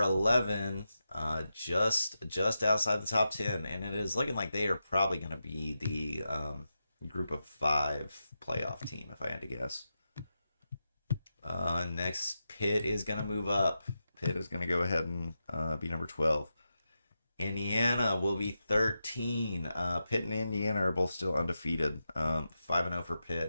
just outside the top 10. And it is looking like they are probably going to be the group of 5 playoff team, if I had to guess. Next, Pitt is going to move up. Pitt is going to go ahead and be number 12. Indiana will be 13. Pitt and Indiana are both still undefeated. 5-0 for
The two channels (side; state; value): both; inverted; correlation -0.89